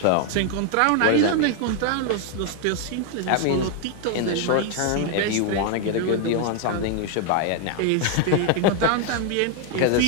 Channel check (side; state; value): both; different; correlation 0.01